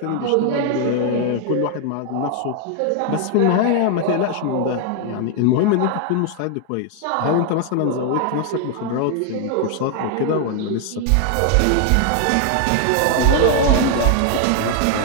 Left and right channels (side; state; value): both; different; correlation 0.00